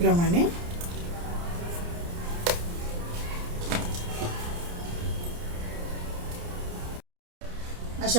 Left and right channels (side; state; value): left; late; 29 ms